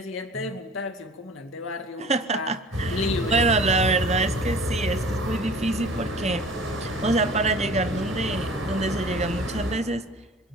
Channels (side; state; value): both; normal; correlation 0.45